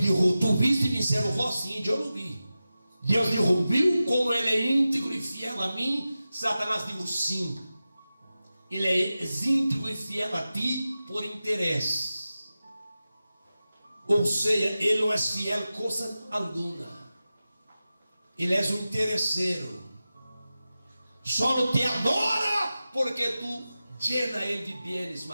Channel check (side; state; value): both; inverted; correlation -0.94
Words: tu viste vencer o Ró? Sim, eu não vi. Deus disse: viu como ele é íntegro e fiel a mim? Satanás disse: sim. Ele é íntegro e fiel a ti por interesse. Ou seja, ele não é fiel coisa alguma. Ele é um interesseiro. Só te adora porque tu llena ele de bens